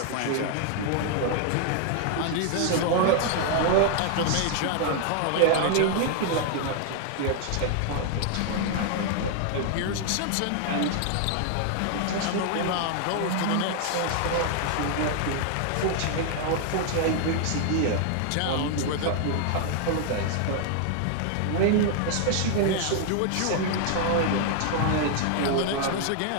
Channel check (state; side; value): different; both; correlation 0.00